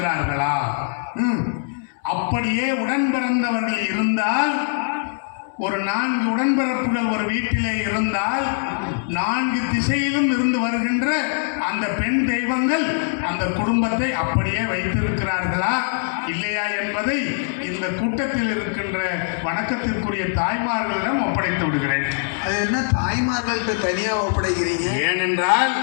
அப்படியே உடன் பிறந்தவர்கள் இருந்தால், ஒரு 4 உடன்பிறப்புகள் ஒரு வீட்டிலே இருந்தால் 4 திசையிலும் இருந்து வருகின்ற அந்த பெண் தெய்வங்கள் அந்த குடும்பத்தை அப்படியே வைத்திருக்கிறார்களா இல்லையா என்பதை இந்த கூட்டத்தில் இருக்கின்ற வணக்கத்திற்குரிய தாய்மார்களிடம் ஒப்படைத்து விடுகிறேன். அது என்ன தாய்மார்களுக்கு தனியாக ஒப்படைக்கிறீங்க? ஏனென்றால்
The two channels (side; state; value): right; silent; 64 dB below the other